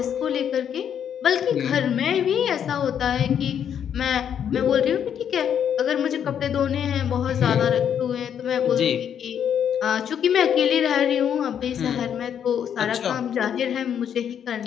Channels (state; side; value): quieter; right; 8.7 dB